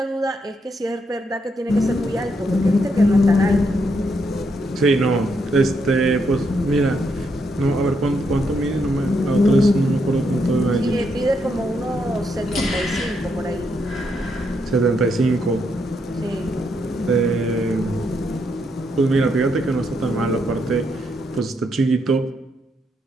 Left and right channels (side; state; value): both; normal; correlation 0.78